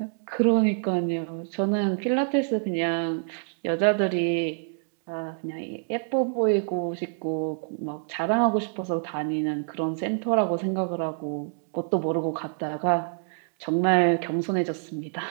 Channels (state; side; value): silent; left; 60 dB below the other